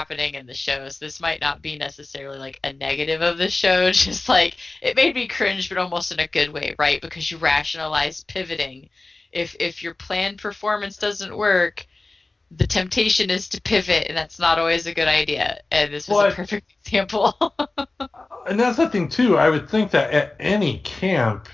in the shows. This might not be necessarily like a negative of the show. Just like it made me cringe, but almost in a good way, right? Because you rationalize pivoting. If your planned performance doesn't work, the temptation is to pivot, and that's not always a good idea. And this was a But perfect example. and that's the thing too. I would think that at any camp,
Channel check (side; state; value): right; quieter; 3.2 dB